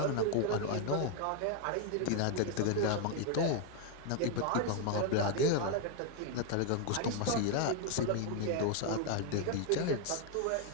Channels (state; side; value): different; both; correlation 0.00